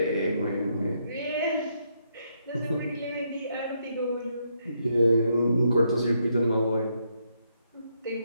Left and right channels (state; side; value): inverted; both; correlation -0.76